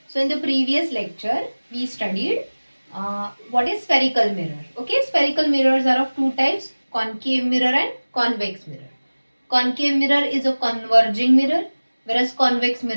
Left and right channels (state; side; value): inverted; both; correlation -1.00